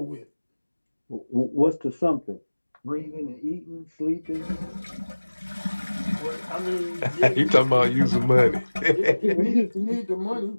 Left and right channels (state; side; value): inverted; both; correlation -1.00